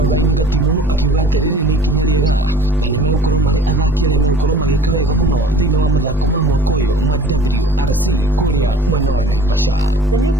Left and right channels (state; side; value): normal; both; correlation 0.47